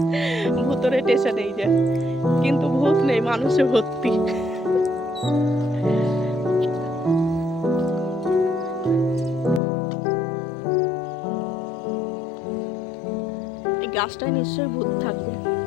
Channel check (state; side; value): drops out; right; at 9.6 s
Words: ভূতুরের স্টেশন। এই যে, কিন্তু ভূত নেই, মানুষে ভর্তি। এই গাছটায় নিশ্চয়ই ভূত থাকবে,